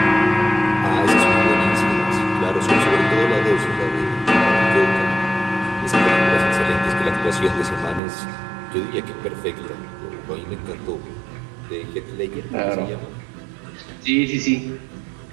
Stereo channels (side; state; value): left; drops out; at 8.0 s